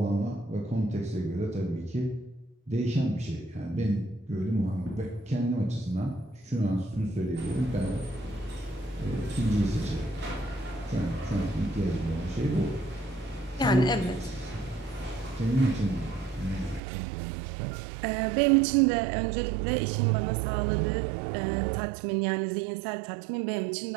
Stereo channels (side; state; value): left; drops out; at 16.8 s